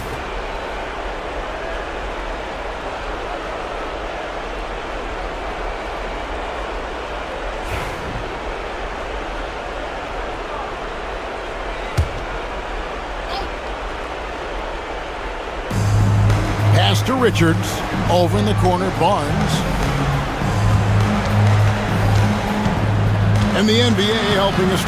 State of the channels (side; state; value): both; identical; correlation 1.00